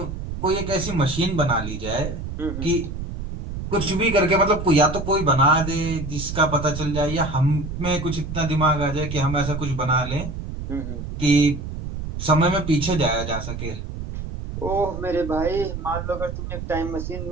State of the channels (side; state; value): right; noise; rumble, 7 dB below the sound